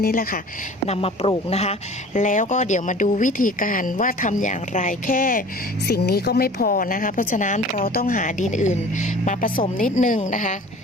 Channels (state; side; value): normal; both; correlation 0.44